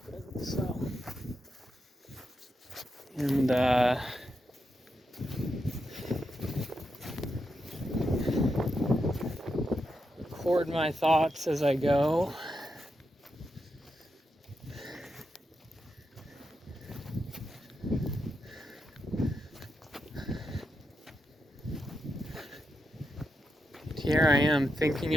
So, and record my thoughts as I go. Here I am thinking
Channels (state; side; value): normal; both; correlation 0.85